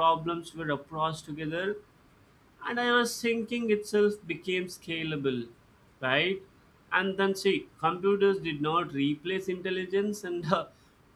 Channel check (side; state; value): both; identical; correlation 1.00